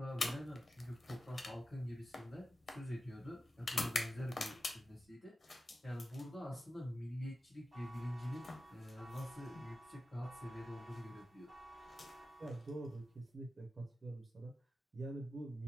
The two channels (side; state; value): both; normal; correlation 0.93